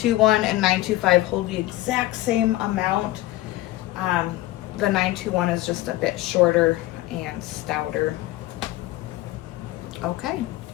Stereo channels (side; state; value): right; quieter; 16.7 dB